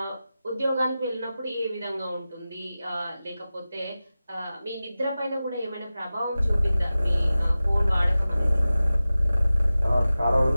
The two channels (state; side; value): inverted; both; correlation -0.96